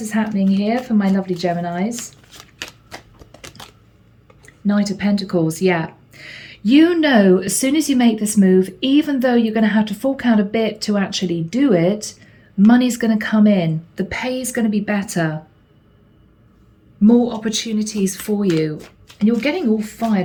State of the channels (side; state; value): both; identical; correlation 1.00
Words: is happening here for my lovely Geminis? Knight of Pentacles, yeah. You know, as soon as you make this move, even though you're going to have to fork out a bit to actually do it, money's going to come in. The pay is going to be better. More opportunities for you. And you're getting all